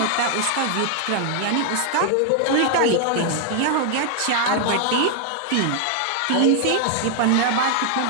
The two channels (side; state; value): both; different; correlation 0.00